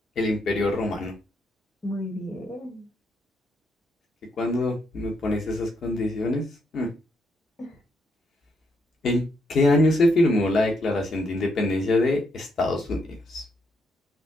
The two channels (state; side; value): normal; both; correlation 0.77